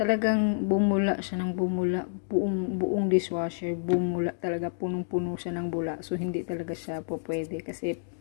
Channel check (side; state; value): right; silent; digital silence